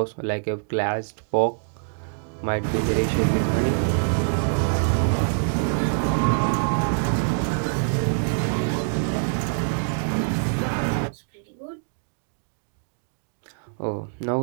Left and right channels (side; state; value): left; silent; digital silence